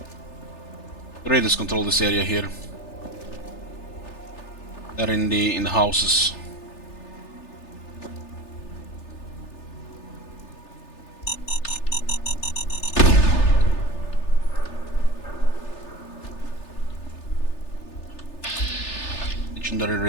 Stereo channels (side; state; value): right; late; 3.3 ms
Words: The raiders control this area here. They're in the houses. Legendary